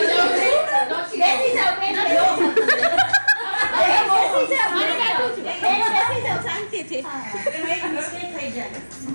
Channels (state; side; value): inverted; both; correlation -1.00